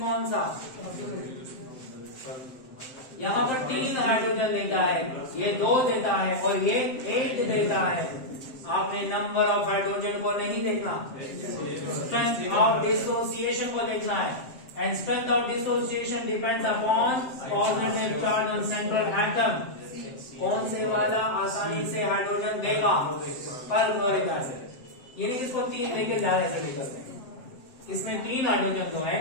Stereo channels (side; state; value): right; late; 7.7 ms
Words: कौन सा? यहाँ पर 3 हाइड्रोजन लेता है, ये 2 देता है और ये 1 देता है। आपने नंबर ऑफ हाइड्रोजन को नहीं देखना, स्ट्रेंथ ऑफ डिसोसिएशन को देखना है। And strength of dissociation depends upon positive charge on central atom. कौन से वाला आसानी से हाइड्रोजन देगा? Perchloric acid. यानी इसको 3 देके ज्यादा एसिडिक करते हैं। इसमें 3 हाइड्रोजन तो